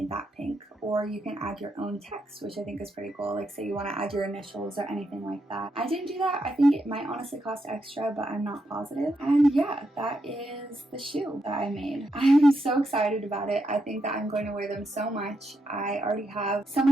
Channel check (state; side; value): normal; both; correlation 0.82